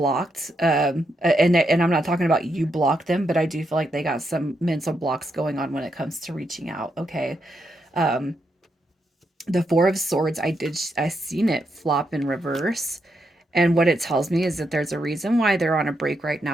And I'm not talking about you blocked them, but I do feel like they got some mental blocks going on when it comes to reaching out. Okay. Um, the Four of Swords, I seen it flop in reverse. And what it tells me is that there's a reason why they're on a break right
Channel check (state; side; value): normal; both; correlation 0.81